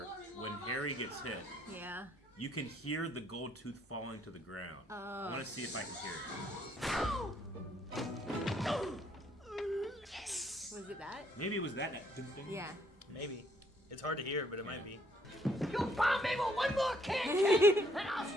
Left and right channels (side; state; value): both; normal; correlation 0.68